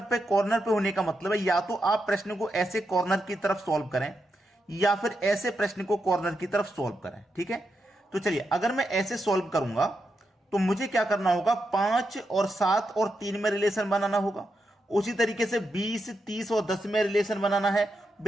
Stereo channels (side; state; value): both; normal; correlation 0.85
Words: पे कॉर्नर पे होने का मतलब है या तो आप प्रश्न को ऐसे कॉर्नर की तरफ सॉल्व करें या फिर ऐसे प्रश्न को कॉर्नर की तरफ सॉल्व करें। ठीक है, तो चलिए, अगर मैं ऐसे सॉल्व करूंगा तो मुझे क्या करना होगा, 5 और 7 और 3 में रिलेशन बनाना होगा। उसी तरीके से 20, 30 और 10 में रिलेशन बनाना है।